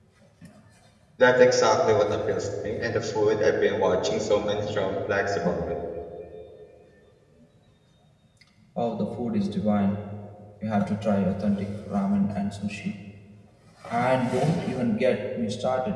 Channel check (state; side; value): identical; both; correlation 1.00